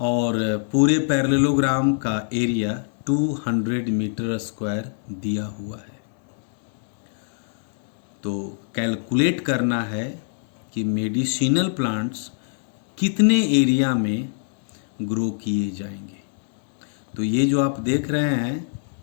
पूरे पैरेललोग्राम का एरिया 200 मीटर स्क्वायर दिया हुआ है। तो कैलकुलेट करना है कि मेडिसिनल प्लांट्स कितने एरिया में ग्रो किए जाएंगे। तो ये जो आप देख रहे हैं,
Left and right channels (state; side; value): silent; right; digital silence